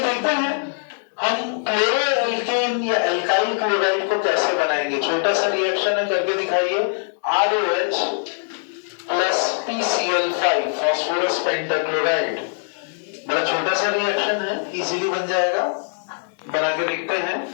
हैं हम क्लोरो एल्केन या एल्काइल क्लोराइड को कैसे बनाएंगे। छोटा सा रिएक्शन है, करके दिखाइए। ROH plus PCl5 phosphorus pentachloride. बड़ा छोटा सा रिएक्शन है, इजीली बन जाएगा। बना के देखते हैं।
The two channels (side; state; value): right; silent; 63 dB below the other